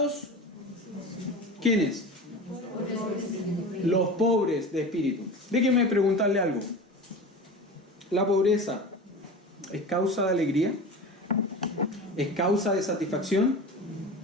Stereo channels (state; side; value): normal; both; correlation 0.32